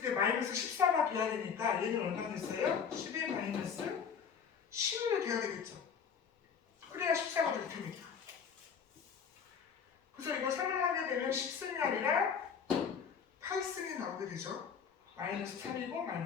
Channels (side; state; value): right; quieter; 6.8 dB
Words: 마이너스 14가 돼야 되니까 얘는 얼마 됐어요? 10-11이 돼야 되겠죠. 그래야 14가 될 테니까. 그래서 이거 설명하게 되면 10승이 아니라 8승이 나오게 되죠. 마이너스 3이고